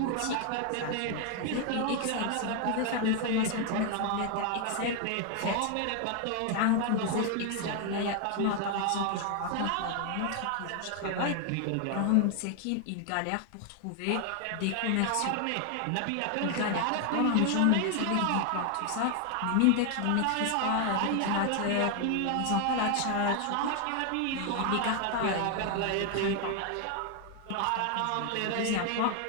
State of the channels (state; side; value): different; both; correlation 0.00